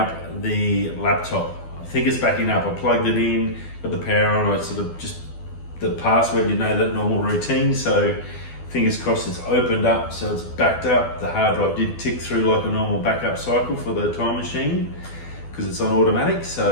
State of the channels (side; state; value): right; late; 12 ms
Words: the laptop. I think it's backing up. I plugged it in, got the power on. I sort of just the password, you know, that normal routine. So fingers crossed it's opened up, so it's backed up. The hard drive did tick through like a normal backup cycle for the time machine, because it's on automatic,